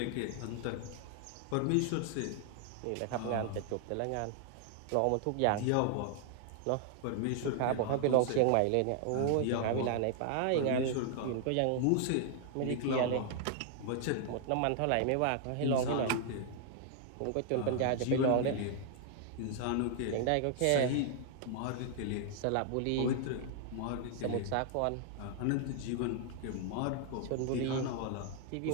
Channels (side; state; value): both; different; correlation 0.00